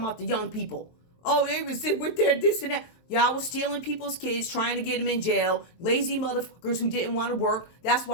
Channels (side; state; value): right; late; 23 ms